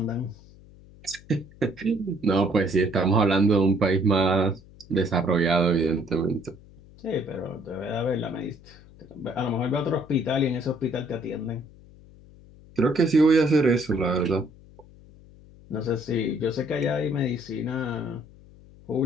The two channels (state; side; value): noise; left; hum, 23 dB below the sound